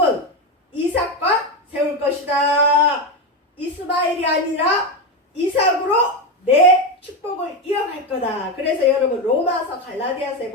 이삭과 세울 것이다. 이스마엘이 아니라 이삭으로 내 축복을 이어갈 거다. 그래서 여러분 로마서 갈라디아서에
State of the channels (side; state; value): both; normal; correlation 0.13